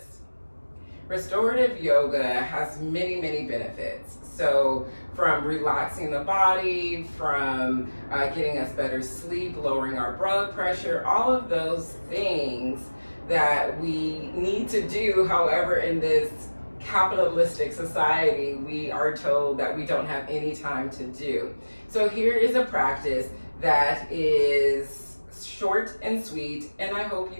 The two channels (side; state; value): both; inverted; correlation -1.00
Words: Restorative yoga has many, many benefits. So from relaxing the body, from getting us better sleep, lowering our blood pressure, all of those things that we need to do. However, in this capitalistic society, we are told that we don't have any time to do. So here is a practice that is short and sweet, and I hope